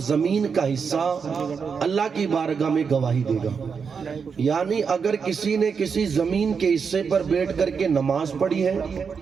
زمین کا حصہ اللہ کی بارگاہ میں گواہی دے گا۔ یعنی اگر کسی نے کسی زمین کے حصے پر بیٹھ کر کے نماز پڑھی ہے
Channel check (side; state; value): left; quieter; 5.9 dB